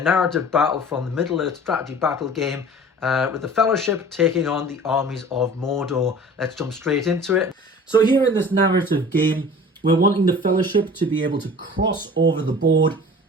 narrative battle from the Middle-earth strategy battle game with the Fellowship taking on the armies of Mordor. Let's jump straight into it. So here in this narrative game, we're wanting the Fellowship to be able to cross over the board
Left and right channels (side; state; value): both; normal; correlation 0.43